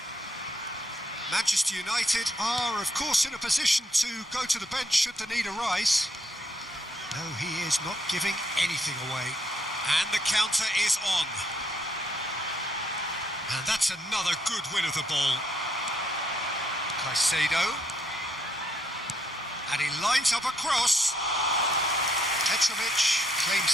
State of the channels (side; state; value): both; normal; correlation 0.73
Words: Manchester United are, of course, in a position to go to the bench should the need arise. No, he is not giving anything away. And the counter is on. And that's another good win of the ball. Caicedo. And he lines up a cross. Petrovic